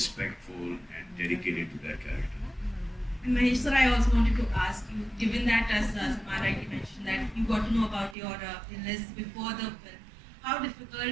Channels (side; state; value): left; drops out; at 8.2 s